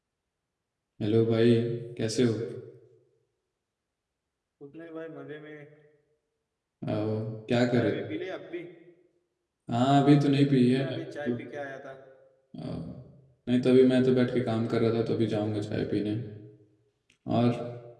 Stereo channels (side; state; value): both; identical; correlation 1.00